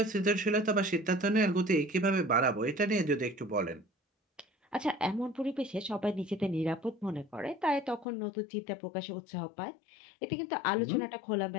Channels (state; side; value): drops out; right; at 8.1 s